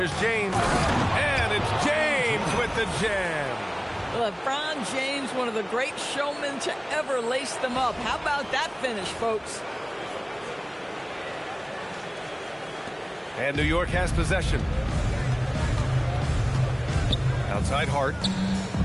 James. And it's James with the jam. LeBron James, one of the great showmen to ever lace them up. How about that finish, folks? And New York has possession. Outside Hart.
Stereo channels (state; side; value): identical; both; correlation 1.00